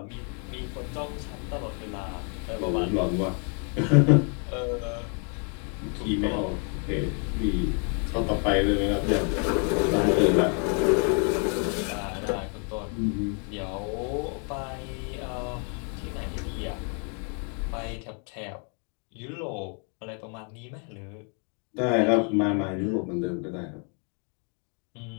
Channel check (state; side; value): quieter; right; 40.0 dB